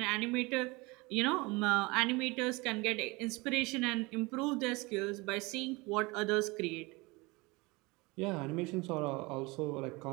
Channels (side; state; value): left; quieter; 24.6 dB